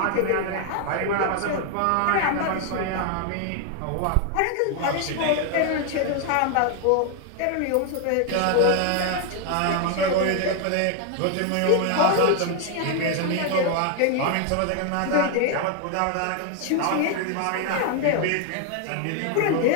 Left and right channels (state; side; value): different; both; correlation 0.01